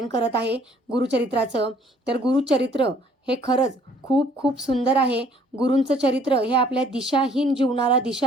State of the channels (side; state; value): both; normal; correlation 0.59